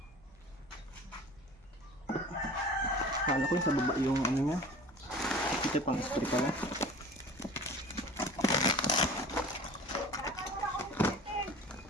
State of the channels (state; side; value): normal; both; correlation 0.42